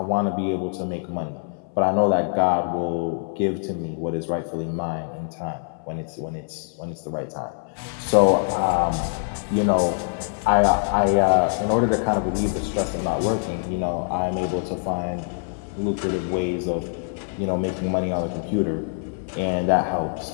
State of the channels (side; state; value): right; silent; 62 dB below the other